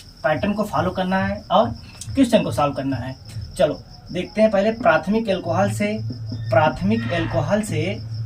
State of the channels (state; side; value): identical; both; correlation 1.00